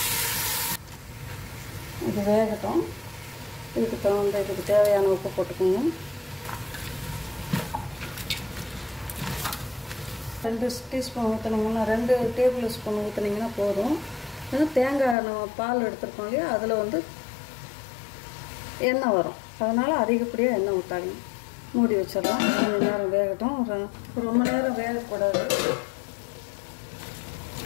இது வேகட்டும். இதுக்கு தேவையான உப்பு போட்டுக்கோங்க. 2 டீஸ்பூன் ஊற்றுனீங்கன்னா, 2 டேபிள் ஸ்பூன் ஊற்றுனீங்கன்னா போதும். தேங்காய் நம்ம பால் எடுத்துருக்கோம் இல்லையா, அதில் வந்து எண்ணெய் வரும். அதனால் அதிகப்படியாக எண்ணெய் ஊற்றாதீங்க. மூடி வச்சிடலாம். கொஞ்சம் நேரம் வேகட்டும். ரொம்ப நேரம் வேகக்கூடாது.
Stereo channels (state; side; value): drops out; right; at 15.2 s